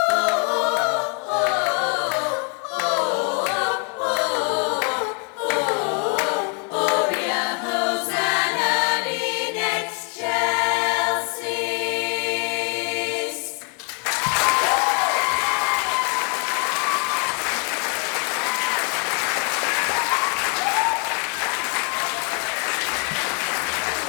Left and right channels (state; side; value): quieter; right; 36.9 dB